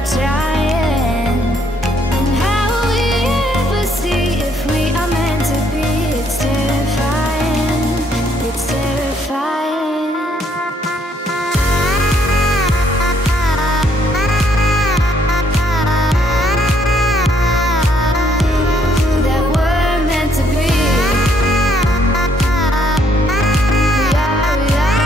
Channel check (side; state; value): both; normal; correlation 0.68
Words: trying? And how will we ever see if we are meant to be? It's terrifying, it's terrifying.